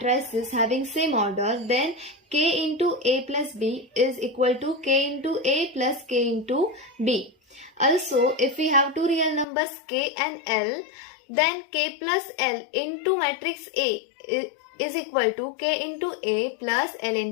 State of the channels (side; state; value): right; drops out; at 9.5 s